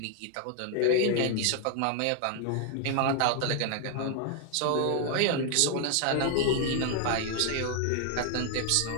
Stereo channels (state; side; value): different; both; correlation 0.00